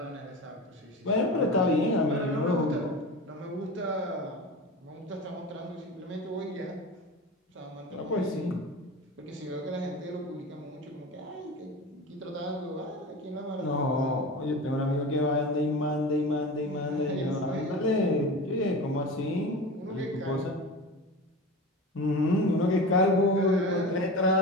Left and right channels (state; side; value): normal; both; correlation 0.30